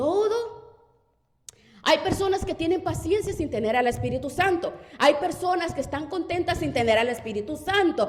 hay personas que tienen paciencia sin tener al Espíritu Santo. Hay personas que están contentas sin tener al Espíritu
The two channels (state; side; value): identical; both; correlation 1.00